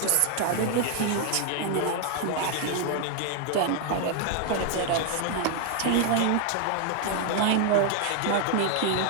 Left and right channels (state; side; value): different; both; correlation 0.00